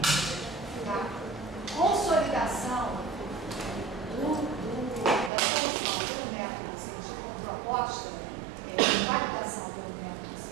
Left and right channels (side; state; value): left; drops out; at 5.3 s